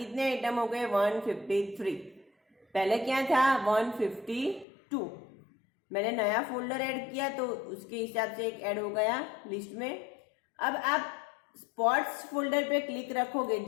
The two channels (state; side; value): drops out; right; at 4.7 s